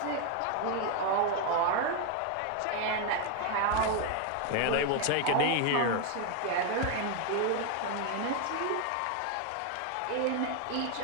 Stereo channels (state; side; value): different; both; correlation 0.01